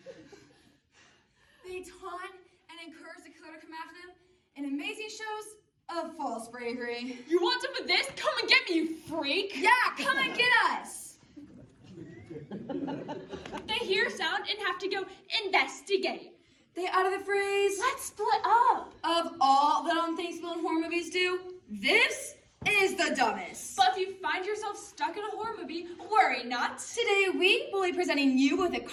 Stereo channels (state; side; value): identical; both; correlation 1.00